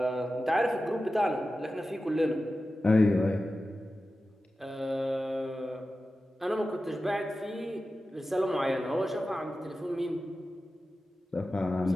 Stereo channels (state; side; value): normal; both; correlation 0.93